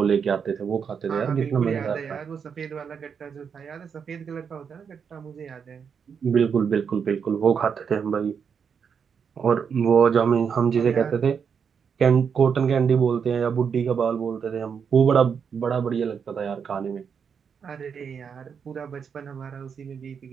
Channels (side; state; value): left; quieter; 6.7 dB